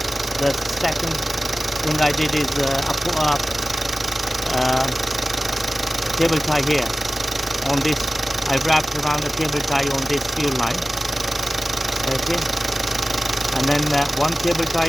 the second thing I did is I put a cable tie here on this. I wrapped around a cable tie on this fuel line, okay, and then one cable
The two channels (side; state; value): both; normal; correlation 0.96